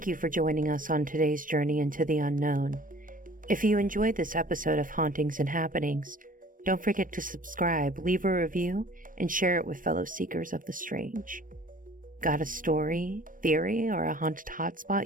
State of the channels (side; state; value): left; late; 0.40 ms